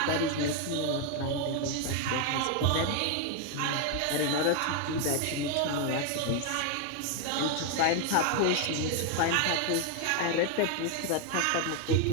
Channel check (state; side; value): different; both; correlation 0.01